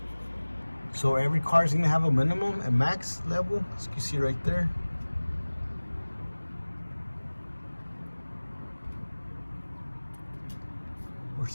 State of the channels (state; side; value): inverted; both; correlation -1.00